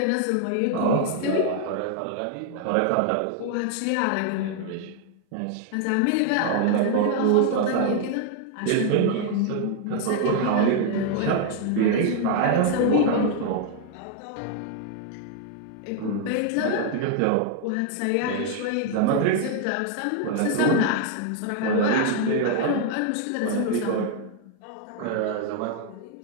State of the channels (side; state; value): both; different; correlation 0.00